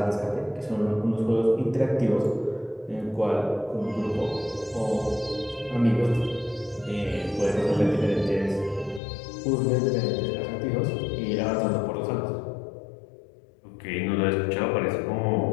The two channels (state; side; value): drops out; right; at 9.0 s